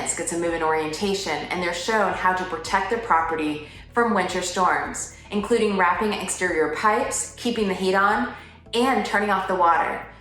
gets a move-in orientation, and they're shown how to protect their property from winter storms, including wrapping exterior pipes, keeping the heat on, and turning off the water.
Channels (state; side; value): identical; both; correlation 1.00